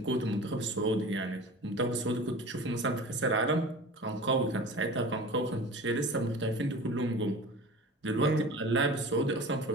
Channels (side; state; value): both; normal; correlation 0.37